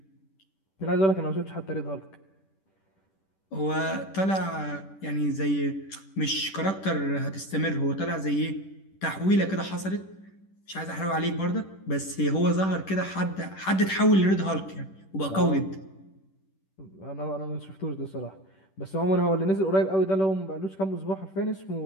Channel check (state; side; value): late; right; 10 ms